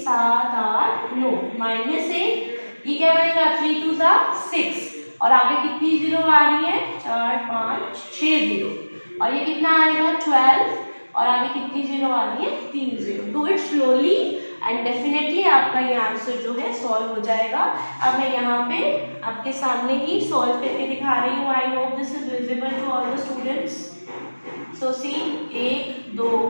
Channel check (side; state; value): both; inverted; correlation -1.00